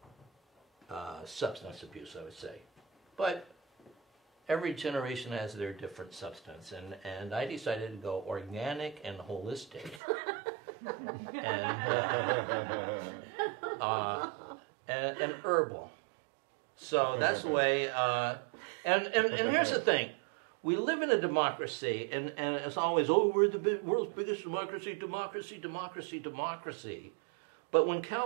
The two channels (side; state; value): left; drops out; at 10.0 s